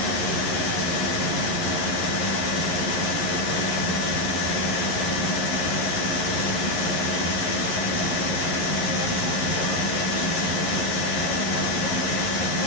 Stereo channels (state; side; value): late; right; 11 ms